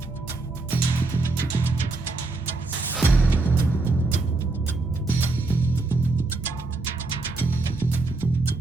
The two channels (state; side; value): quieter; left; 3.4 dB